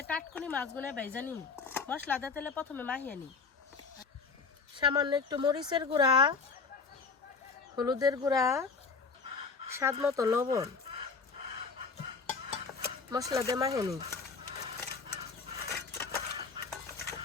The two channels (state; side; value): quieter; right; 4.9 dB